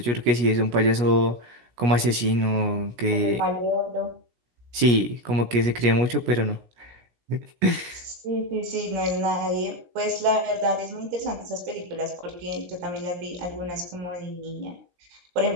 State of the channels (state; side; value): late; left; 17 ms